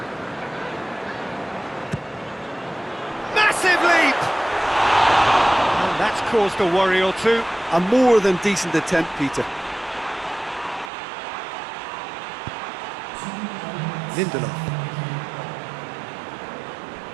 Massive leap! And that's caused a worry or two. A more than decent attempt, Peter. Lindelof.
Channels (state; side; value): drops out; left; at 10.9 s